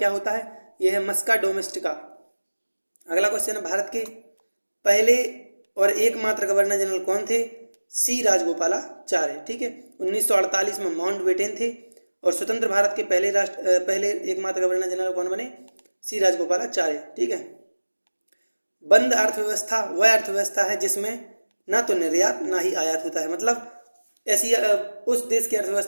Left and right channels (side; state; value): both; inverted; correlation -1.00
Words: होता है? यह है मस्का डोमेस्टिका। अगला क्वेश्चन है भारत के पहले और एकमात्र गवर्नर जनरल कौन थे? सी राजगोपालाचार्य। ठीक है। 1948 में माउंट बेटेन थे और स्वतंत्र भारत के पहले एकमात्र गवर्नर जनरल कौन बने? सी राजगोपालाचार्य। ठीक है। बंद अर्थव्यवस्था वह अर्थव्यवस्था है जिसमें ना तो निर्यात ना ही आयात होता है। मतलब ऐसी उस देश की